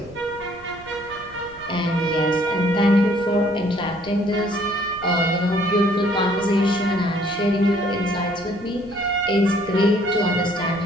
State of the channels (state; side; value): noise; right; rumble, 22 dB below the sound